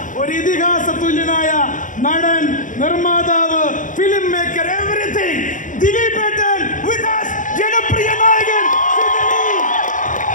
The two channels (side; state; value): right; late; 0.37 ms